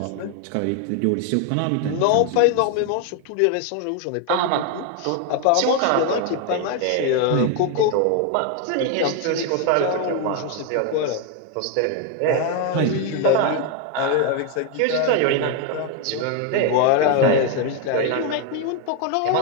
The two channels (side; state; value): both; different; correlation 0.01